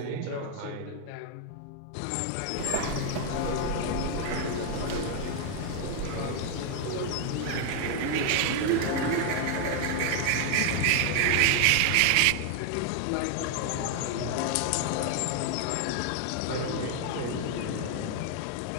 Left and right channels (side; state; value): both; different; correlation 0.00